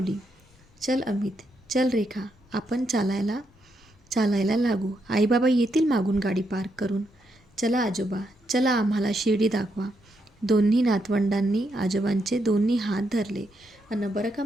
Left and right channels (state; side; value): normal; both; correlation 0.80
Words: चल अमित, चल रेखा, आपण चालायला लागू. आईबाबा येतील मागून गाडी पार्क करून. चला आजोबा, चला आम्हाला शिर्डी दाखवा. दोन्ही नातवंडांनी आजोबांचे दोन्ही हात धरले. अन बरं का